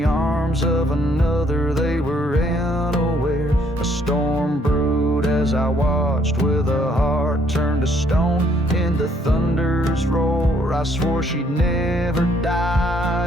arms of another they were unaware. A storm brewed as I watched, with a heart turned to stone in the thunder's roar. I swore she'd never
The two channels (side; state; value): both; normal; correlation 0.67